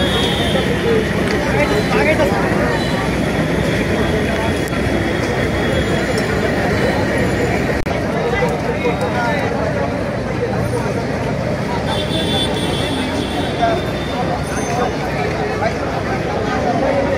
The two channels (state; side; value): identical; both; correlation 1.00